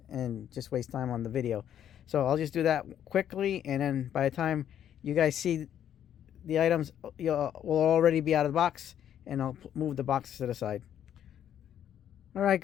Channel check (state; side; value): quieter; right; 10.1 dB